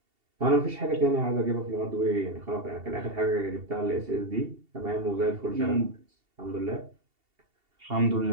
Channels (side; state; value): left; late; 2.7 ms